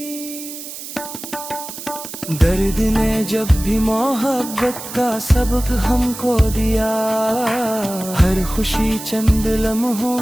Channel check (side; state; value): right; noise; hiss, 11 dB below the sound